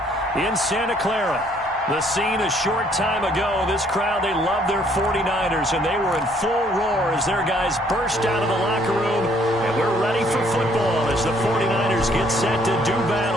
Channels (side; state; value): both; normal; correlation 0.64